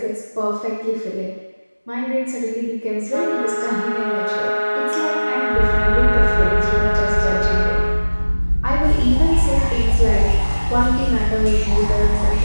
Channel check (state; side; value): inverted; both; correlation -1.00